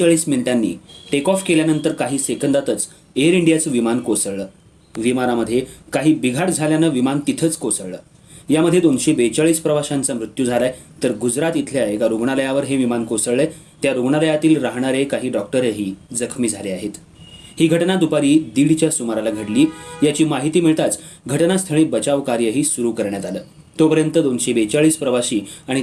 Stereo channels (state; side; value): identical; both; correlation 1.00